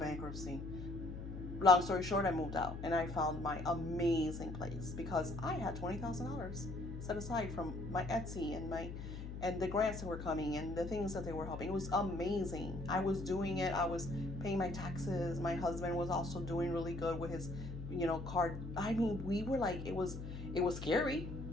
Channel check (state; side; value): noise; left; hum, 8 dB below the sound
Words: Long story short, I moved out, and I found my amazing place because I had $20,000 set aside from my Etsy and the grants that were coming and the things that they were helping. It was amazing. I was doing it. I was paying my taxes. My husband was also doing really good with his, card. I mean, we were like, it was scary.